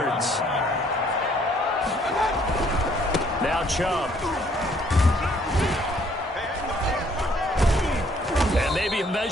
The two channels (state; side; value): normal; both; correlation 0.63